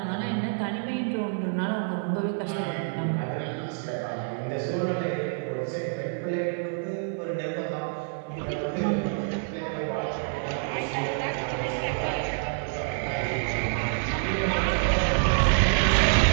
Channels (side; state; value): left; silent; 60 dB below the other